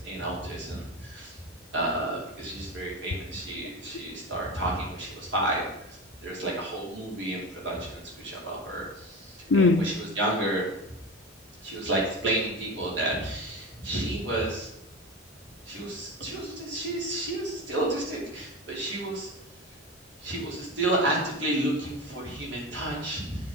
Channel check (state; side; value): normal; both; correlation 0.25